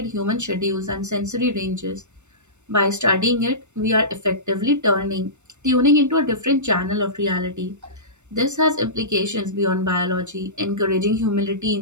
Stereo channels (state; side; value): late; left; 0.84 ms